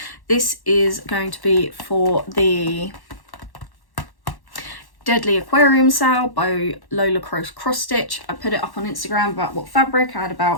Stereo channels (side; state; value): right; late; 1.1 ms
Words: This is going to be for the Deadly Aquarium sale by Lola Cross Stitch. I put it up on Instagram about what fabric. I had